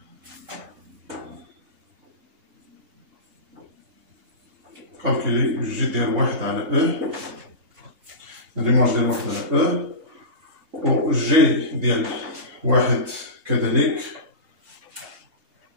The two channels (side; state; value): left; late; 2.8 ms